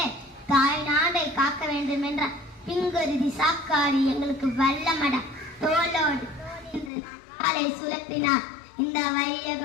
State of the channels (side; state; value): right; drops out; at 6.9 s